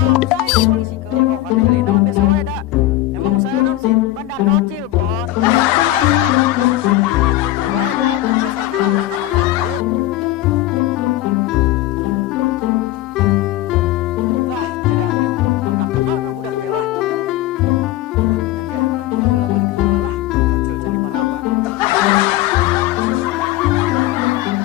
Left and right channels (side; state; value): right; quieter; 15.2 dB